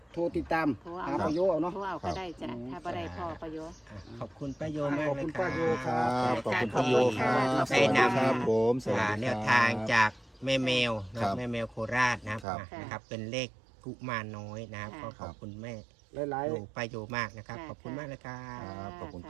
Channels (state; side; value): drops out; left; at 12.5 s